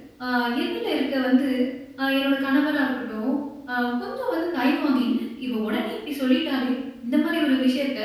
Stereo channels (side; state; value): both; identical; correlation 1.00